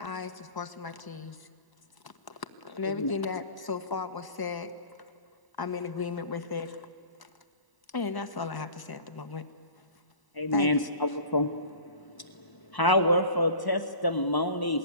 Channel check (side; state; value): right; late; 1.0 ms